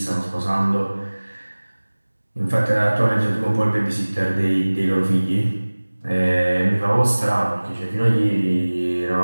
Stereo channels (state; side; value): inverted; both; correlation -1.00